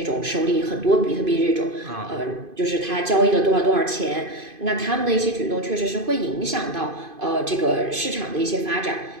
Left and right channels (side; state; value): left; late; 2.5 ms